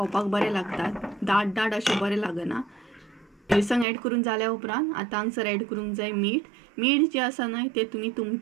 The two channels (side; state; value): left; drops out; at 3.9 s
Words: बरें लागतात, दाट दाट अशें बरें लागना. मिरसांग ऍड करून जाल्या उपरांत आतां हांगसर ऍड करूंक जाय मीठ. मीठ जें आसा न्हय तें तुमी